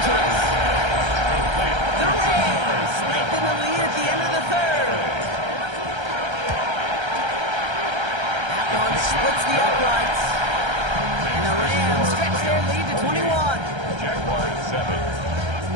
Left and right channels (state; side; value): late; left; 1.3 ms